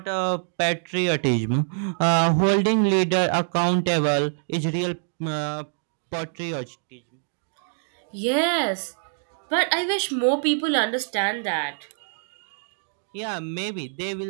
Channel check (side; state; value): left; silent; digital silence